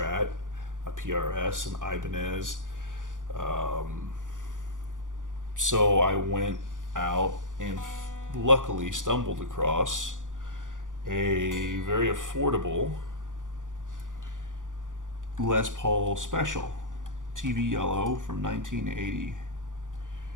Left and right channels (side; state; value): left; late; 0.88 ms